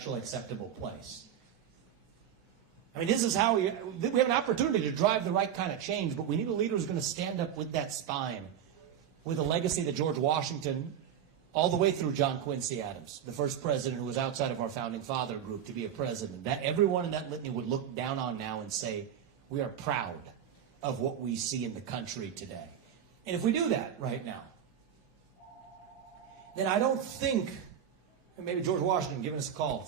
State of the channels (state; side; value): quieter; left; 9.3 dB